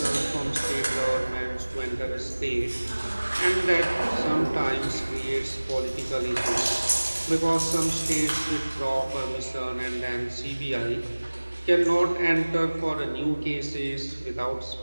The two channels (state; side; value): inverted; both; correlation -1.00